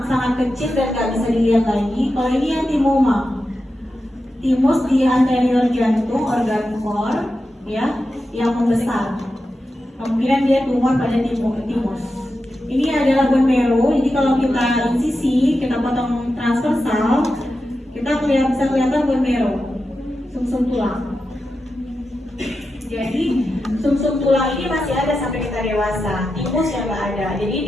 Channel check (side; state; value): both; normal; correlation 0.90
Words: kecil dan nggak bisa dilihat lagi. Kalau ini yang timoma. Timus di anterior jantung, organ core, ya, yang membesar. Kemungkinan dia tumor pada timus. Ini adalah bone marrow. Jadi kalau kita insisi, kita potong transversal, kita bisa kelihatan bone marrow, sumsum tulang. Jadi sumsum tulang ini masih ada sampai kita dewasa. Timus yang nggak ada. Jadi